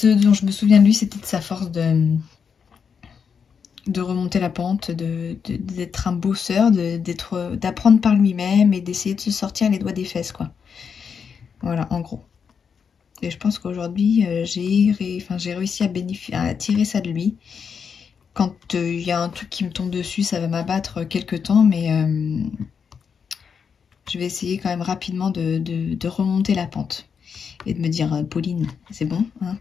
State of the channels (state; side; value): quieter; right; 6.5 dB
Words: dont je me souviens de lui, c'était de sa force de remonter la pente, d'être un bosseur, d'apprendre par lui-même et d'essayer de se sortir les doigts des fesses, quoi. Voilà, en gros. Et je pense qu'aujourd'hui, j'ai réussi à tirer ça de lui. Quand il y a un truc qui me tombe dessus, ça va m'abattre quelques temps, mais je vais essayer quand même rapidement de remonter la pente. Et de me dire, Pauline, c'est bon, hein,